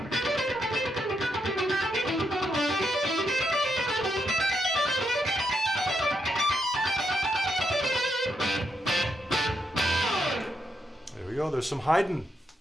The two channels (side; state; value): both; normal; correlation 0.80